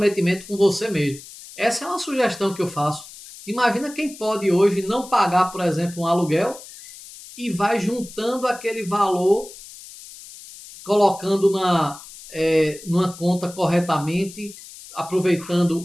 com você mesmo. Essa é uma sugestão que eu faço. Imagina quem pode hoje não pagar, por exemplo, um aluguel e vai juntando aquele valor, colocando numa conta corretamente, aproveitando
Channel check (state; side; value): noise; left; hiss, 17 dB below the sound